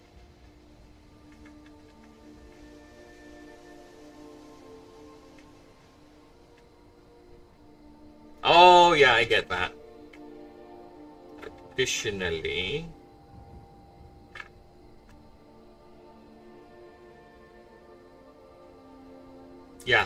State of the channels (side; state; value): both; identical; correlation 1.00